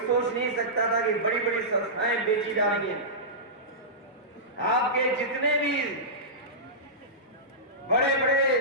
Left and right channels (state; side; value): normal; both; correlation -0.16